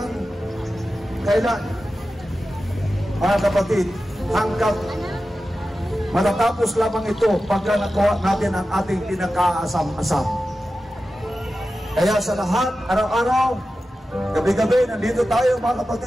kailan? Mga kapatid, hanggang matatapos lamang ito pagka nakuha natin ang ating pinakaasam-asam. Kaya sa lahat, araw-araw, gabi-gabi, nandito tayo mga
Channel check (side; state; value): both; normal; correlation 0.93